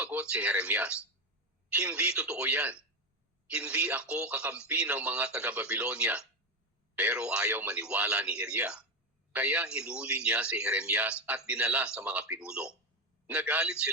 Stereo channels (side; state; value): both; normal; correlation 0.13